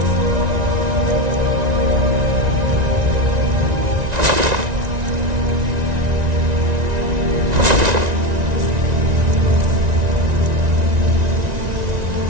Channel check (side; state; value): left; late; 1.9 ms